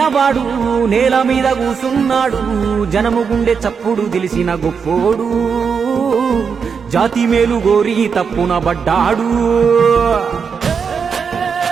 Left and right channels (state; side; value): quieter; left; 6.1 dB